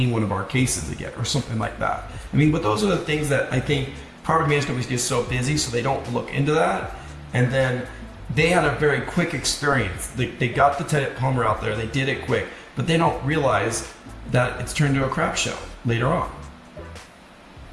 one of our cases again, or something like that. I mean, but those are the things that I think property management companies get so busy, so they don't look into that. And then they had a very quick experience. They got the tenant plumber out there, they did it quick, but they don't realize that it's turned into a crap show later on.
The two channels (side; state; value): both; identical; correlation 1.00